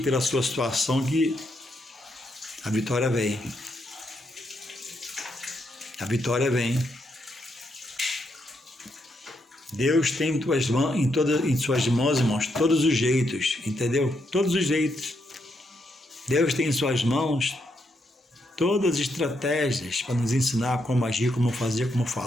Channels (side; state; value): both; normal; correlation 0.79